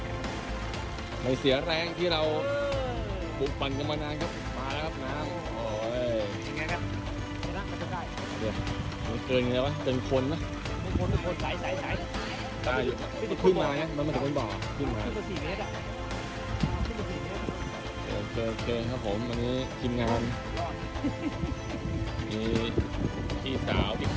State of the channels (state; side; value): identical; both; correlation 1.00